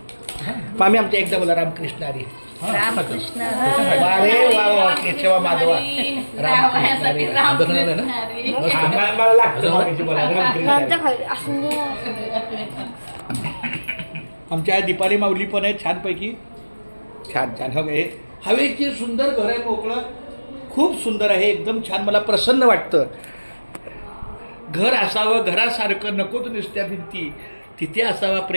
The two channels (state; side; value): inverted; both; correlation -1.00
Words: आम्ही आमच्या एकदा बोला रामकृष्ण हरी रामकृष्ण अरे वा वा केशवा माधवा रामकृष्ण हरी. मला लागतं आमच्या दीपाली माऊली पण आहे छानपैकी. छान छान हे हवेची सुंदर घर आहे, मोकळं, खूप सुंदर आहे, एकदम छान. मला प्रसन्न वाटतं. घर असावं घरासारखं, नकोच नुसत्या भिंती, तिथे असावा